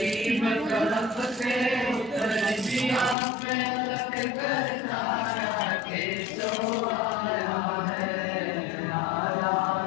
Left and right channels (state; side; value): drops out; right; at 3.2 s